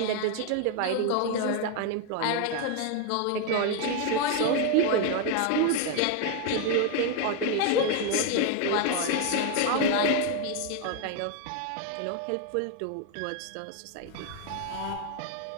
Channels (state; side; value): different; both; correlation 0.01